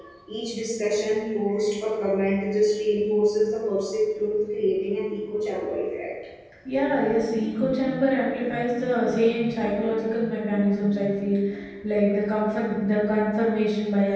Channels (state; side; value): identical; both; correlation 1.00